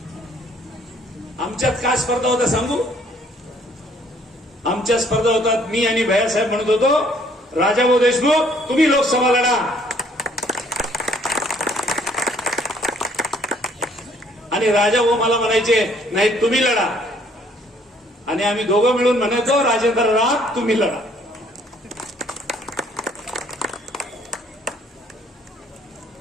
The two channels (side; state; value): both; normal; correlation 0.62